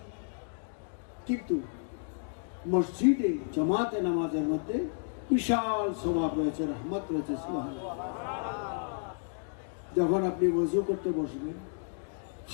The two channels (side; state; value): right; silent; digital silence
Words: কিন্তু মসজিদে জামাতে নামাজের মধ্যে বিশাল সওয়াব রয়েছে, রহমত রয়েছে। সুবহানাল্লাহ। যখন আপনি ওযু করতে বসবেন,